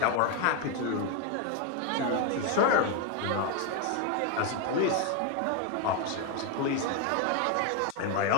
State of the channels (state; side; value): different; both; correlation 0.01